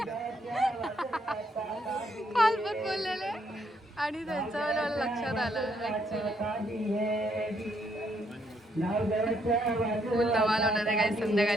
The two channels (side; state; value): both; normal; correlation 0.73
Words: बोललेले आणि त्यांचं मला लक्षात आलं ऍक्च्युली फुल धमाल होणार आहे काही